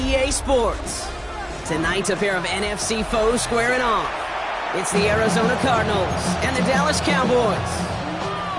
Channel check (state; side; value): identical; both; correlation 1.00